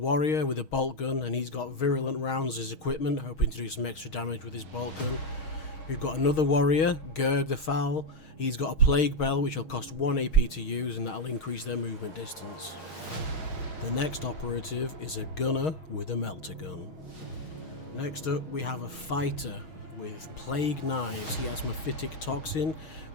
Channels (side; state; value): right; late; 6.4 ms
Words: with a bolt gun, and he's got virulent rounds as equipment, hoping to do some extra damage with his bolt gun. We've got another warrior, Gerg the Foul. He's got a plague bell which will cost 1 AP to use, and that'll increase their movement distance. The next operative is a gunner with a melter gun. Next up we have a fighter with plague knives. He has mephitic toxin